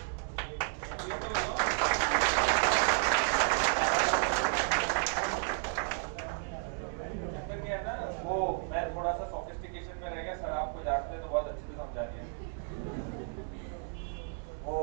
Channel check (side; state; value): left; silent; 56 dB below the other